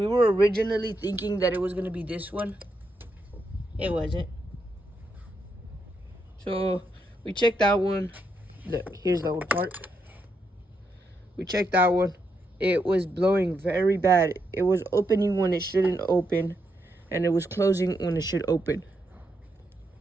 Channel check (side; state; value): both; normal; correlation 0.81